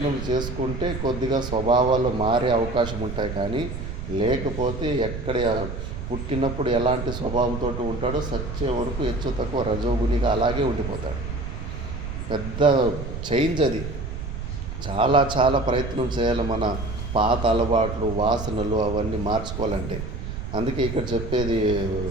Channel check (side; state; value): right; noise; rumble, 6 dB below the sound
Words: చేసుకుంటే కొద్దిగా స్వభావాలు మారే అవకాశం ఉంటాయి. కానీ లేకపోతే ఎక్కడ పుట్టినప్పుడు ఎలాంటి స్వభావంతో ఉంటాడో సచ్చే వరకు హెచ్చు తక్కువ రజోగుణిగా అలాగే ఉండిపోతాడు. పెద్ద చేంజ్ అది. చాలా చాలా ప్రయత్నం చేయాలి మన పాత అలవాట్లు, వాసనలు అవన్నీ మార్చుకోవాలంటే. అందుకే ఇక్కడ చెప్పేది